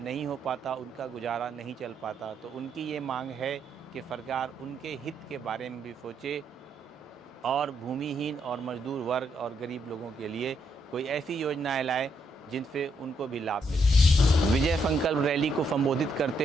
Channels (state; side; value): normal; both; correlation 0.76